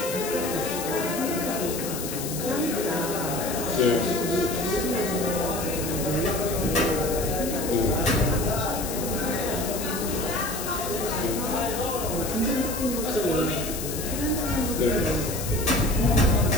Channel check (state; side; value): noise; left; hiss, 7 dB below the sound